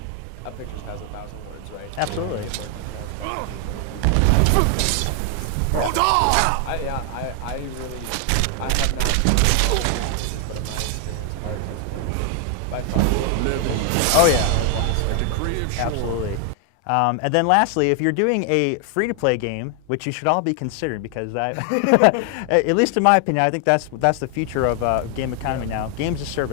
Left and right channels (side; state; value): both; different; correlation 0.00